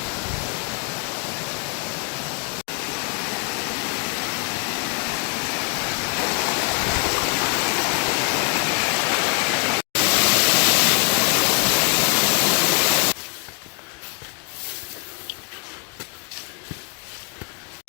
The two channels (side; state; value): right; quieter; 34.3 dB